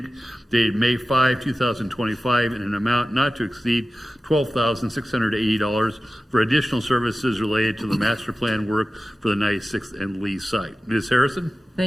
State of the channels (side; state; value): both; normal; correlation 0.95